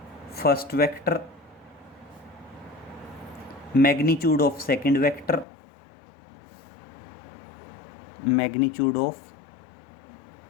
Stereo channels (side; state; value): right; drops out; at 5.5 s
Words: first vector, magnitude of second vector, magnitude of